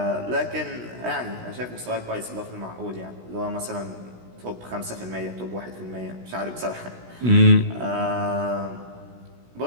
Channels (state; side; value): late; left; 16 ms